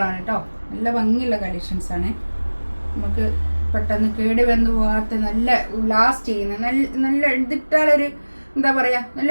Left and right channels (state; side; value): inverted; both; correlation -1.00